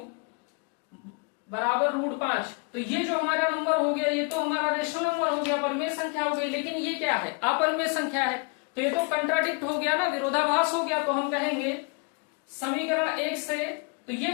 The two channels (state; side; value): quieter; right; 33.9 dB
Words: बराबर √5, तो ये जो हमारा नंबर हो गया ये तो हमारा रेशनल नंबर हो गया, परिमेय संख्या हो गई। लेकिन ये क्या है, अपरिमेय संख्या है, तो ये तो कंट्राडिक्ट हो गया ना, विरोधाभास हो गया। तो हम कहेंगे समीकरण 1 से, तो ये